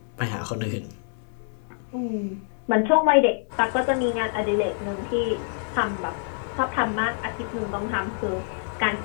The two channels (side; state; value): right; silent; digital silence